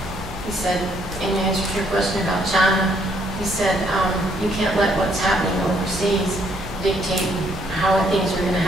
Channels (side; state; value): left; noise; rumble, 12 dB below the sound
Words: He said, in answer to your question about China, he said, you can't let what's happening overseas dictate how things are going to